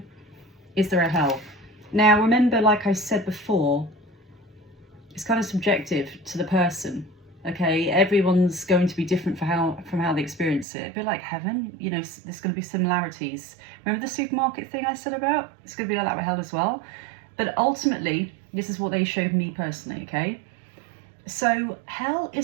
Is there a hell? Now remember, like I said before, it's kind of subjective to the person. Okay, everyone's going to be different from how they experience it. A bit like heaven, you know, there's going to be similarities. Remember the supermarket thing I said about? It's going to be like that with hell as well. But ultimately, this is what they showed me personally, okay? So hell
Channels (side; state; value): left; drops out; at 10.7 s